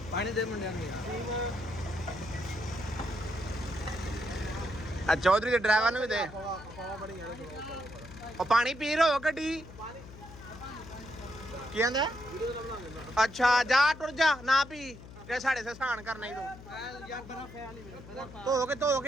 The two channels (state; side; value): noise; left; hum, 16 dB below the sound